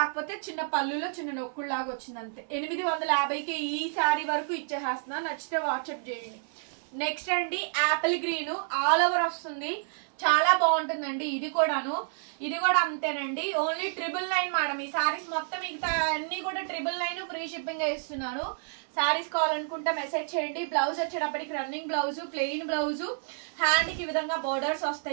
చిన్న పళ్ళులో చిన్న నొక్కుల్లాగా వచ్చింది అంతే. 850కి ఈ శారీ వరకు ఇచ్చేస్తున్నా. నచ్చితే వాట్సాప్ చేయండి. నెక్స్ట్ అండి యాపిల్ గ్రీన్ ఆల్ ఓవర్ వస్తుంది, చాలా బాగుంటుందండి. ఇది కూడాను, ఇది కూడా అంతేనండి. Only 999 madam. ఈ శారీస్ మొత్తం మిగతా అన్ని కూడా 999 ఫ్రీ షిప్పింగ్ ఇస్తున్నాను. శారీస్ కావాలనుకుంటే మెసేజ్ చేయండి. బ్లౌజ్ వచ్చేటప్పటికి running blouse, plain blouse, hand కి విధంగా బోర్డర్స్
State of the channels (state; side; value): silent; left; 56 dB below the other